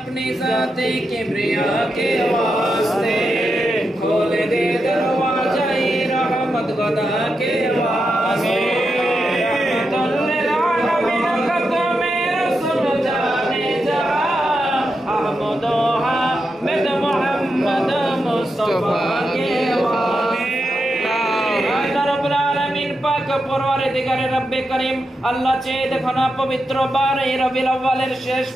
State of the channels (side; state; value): both; normal; correlation 0.87